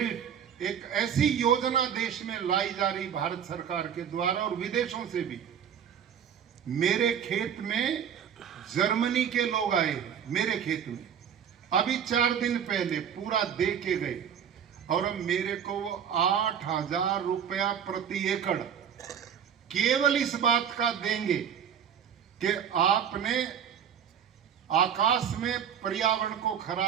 एक ऐसी योजना देश में लाई जा रही भारत सरकार के द्वारा और विदेशों से भी। मेरे खेत में जर्मनी के लोग आए, मेरे खेत में अभी 4 दिन पहले पूरा दे के गए, और अब मेरे को वो 8,000 रुपया प्रति एकड़ केवल इस बात का देंगे कि आपने आकाश में पर्यावरण को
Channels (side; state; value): left; quieter; 8.4 dB